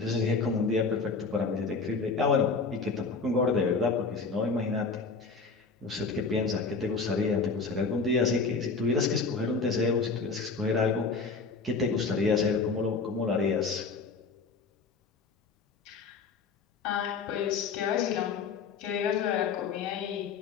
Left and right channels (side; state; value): right; quieter; 4.6 dB